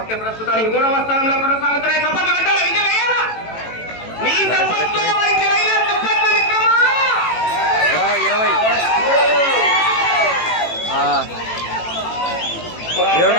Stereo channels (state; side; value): late; right; 18 ms